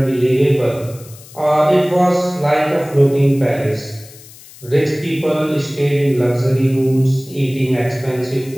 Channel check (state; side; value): noise; left; hiss, 21 dB below the sound